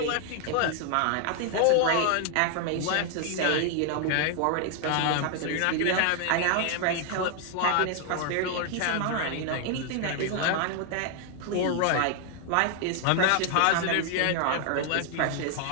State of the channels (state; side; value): different; both; correlation 0.00